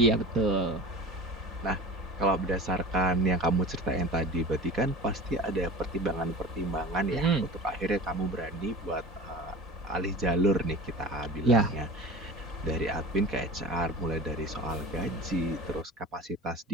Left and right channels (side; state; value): both; normal; correlation 0.35